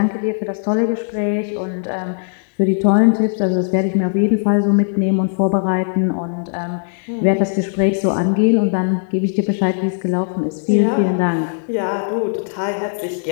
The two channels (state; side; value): silent; right; digital silence